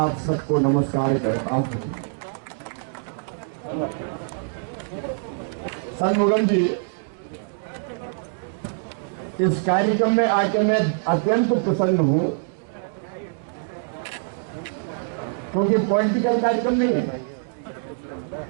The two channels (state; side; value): silent; left; digital silence